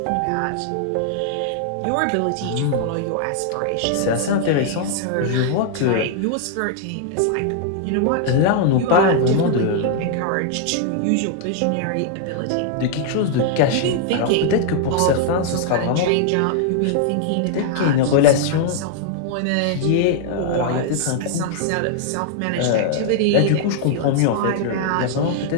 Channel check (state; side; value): different; both; correlation 0.00